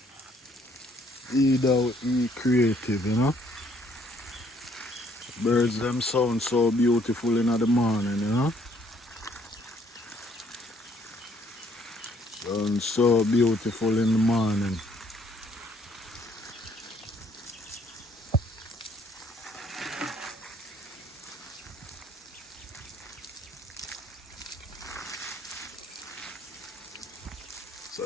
Be creative, you know? Birds them sound so beautiful in the morning, you know? Sound so beautiful in the morning. So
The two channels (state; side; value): normal; both; correlation 0.65